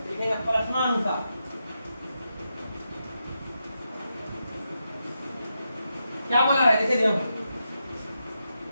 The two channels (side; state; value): both; inverted; correlation -0.86